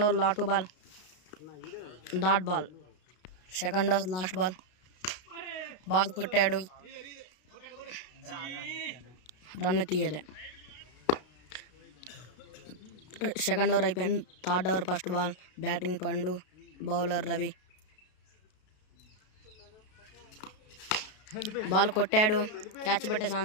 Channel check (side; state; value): right; late; 32 ms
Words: ఓవర్ లాటో ball, dot ball, second over last ball, ball కొట్టాడు, రన్ తీయలే. సెకండ్ ఓవర్ అయిపోయింది. Third over first ball, batting Pandu, bowler Ravi. Ball కొట్టాడు, క్యాచ్ పట్టే